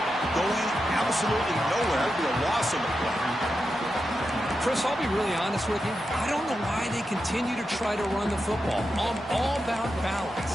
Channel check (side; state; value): both; normal; correlation 0.88